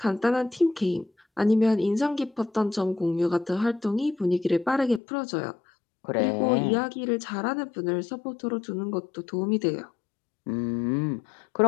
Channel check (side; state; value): right; drops out; at 5.0 s